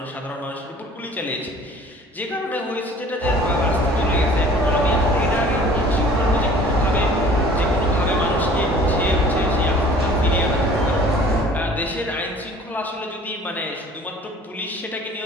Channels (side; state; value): both; normal; correlation 0.49